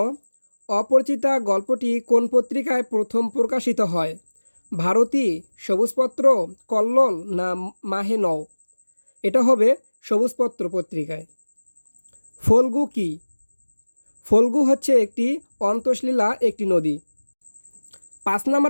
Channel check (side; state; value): both; inverted; correlation -1.00